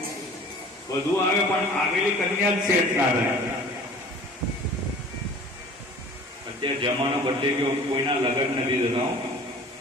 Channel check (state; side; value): normal; both; correlation 0.45